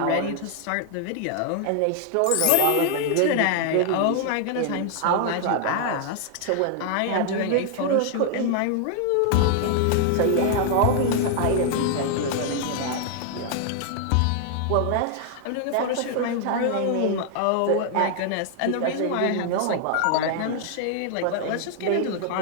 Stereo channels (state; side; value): different; both; correlation 0.00